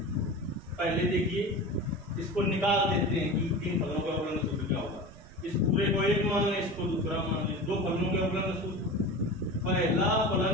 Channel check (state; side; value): noise; right; rumble, 19 dB below the sound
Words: पहले देखिए इसको निकाल देते हैं कि तीन फलनों के अवकलन का सूत्र क्या होगा। इस पूरे को एक मान लें, इसको दूसरा मान लें। दो फलनों के अवकलन का सूत्र, पहला फलन